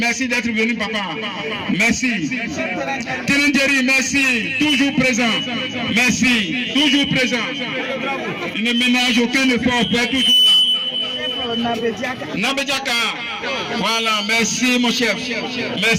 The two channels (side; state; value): both; identical; correlation 1.00